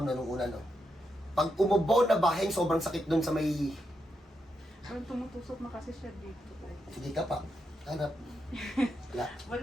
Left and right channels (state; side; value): normal; both; correlation 0.83